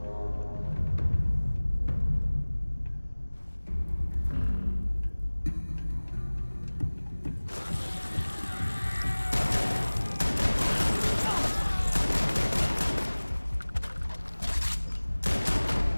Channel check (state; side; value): inverted; both; correlation -1.00